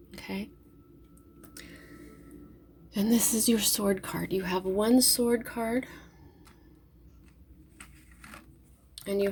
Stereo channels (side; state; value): both; identical; correlation 1.00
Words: Okay? And this is your sword card. You have one sword card, and you